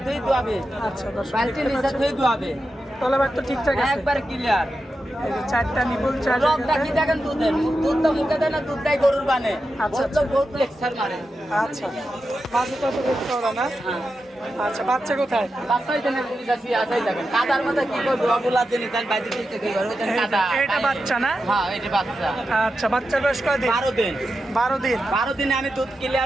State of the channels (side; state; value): both; normal; correlation 0.89